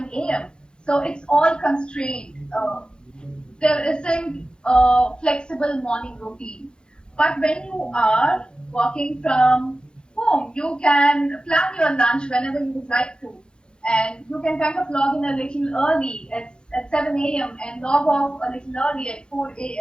a.m. So it's all constrained. There isn't a flexible morning routine. But when you are working from home, you can plan your lunch whenever you would like to. And you can kind of log in a little early at 7 a.m. and log off a little early at 4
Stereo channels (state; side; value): late; right; 0.049 ms